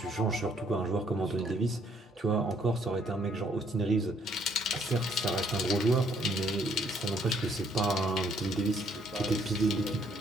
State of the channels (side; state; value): both; normal; correlation 0.66